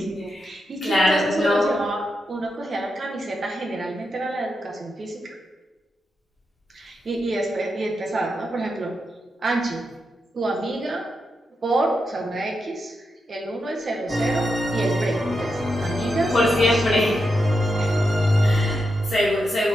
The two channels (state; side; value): normal; both; correlation 0.86